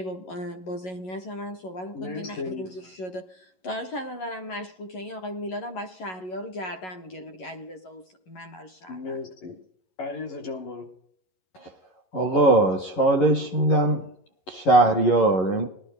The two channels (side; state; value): right; late; 11 ms